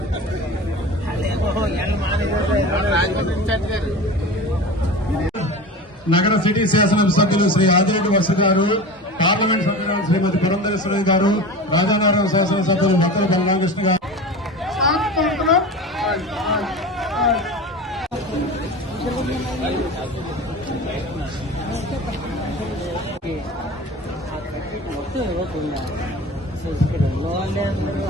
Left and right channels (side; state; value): both; normal; correlation 0.33